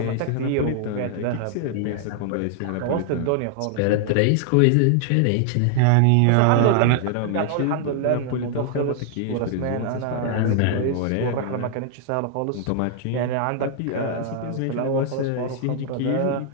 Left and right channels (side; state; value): both; different; correlation 0.00